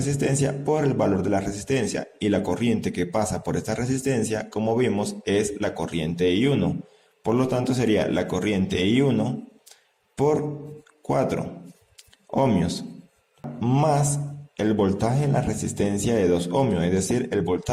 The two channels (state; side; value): identical; both; correlation 1.00